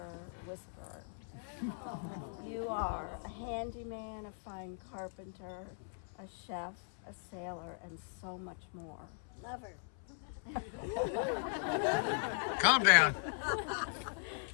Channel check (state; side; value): silent; right; 52 dB below the other